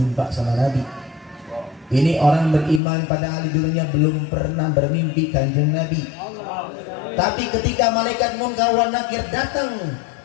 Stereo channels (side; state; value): right; drops out; at 2.8 s